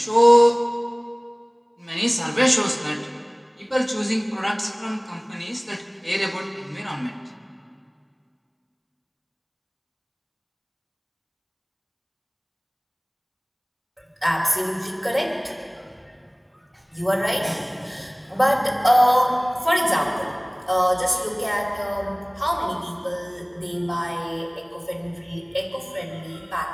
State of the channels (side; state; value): both; identical; correlation 1.00